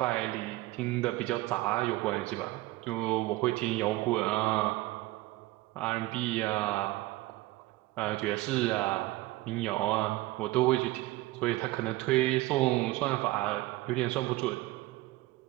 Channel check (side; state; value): left; quieter; 18.7 dB